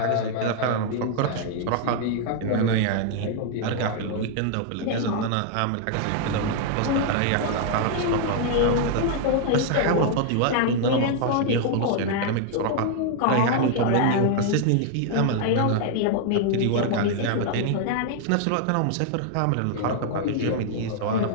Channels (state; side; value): different; both; correlation 0.00